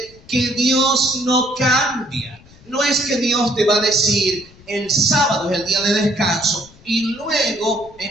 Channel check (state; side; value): noise; left; rumble, 24 dB below the sound